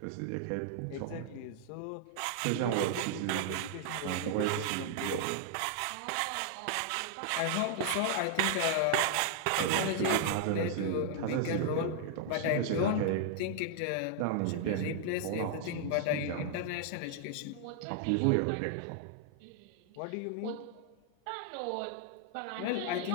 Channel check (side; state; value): both; different; correlation 0.00